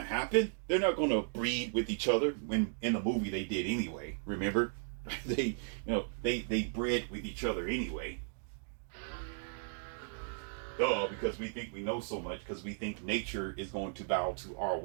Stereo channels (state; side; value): silent; left; digital silence